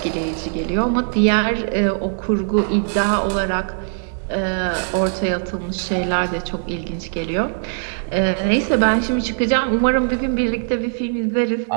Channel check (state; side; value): silent; left; digital silence